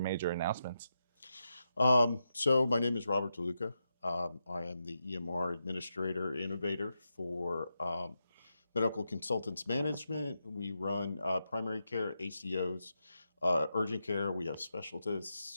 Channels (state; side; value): inverted; both; correlation -0.87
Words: announcements. So my name is Robert DeLuca. I am the EMR administrator innovator for Medical Consultants Management. We run primary care, ACOs, urgent care. We have